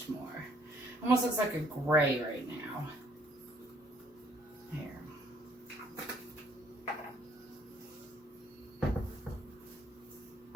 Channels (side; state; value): both; normal; correlation 0.63